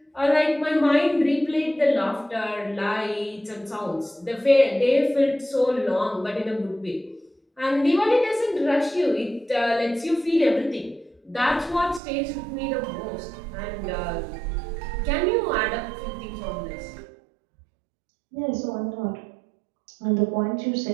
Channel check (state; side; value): drops out; left; at 12.0 s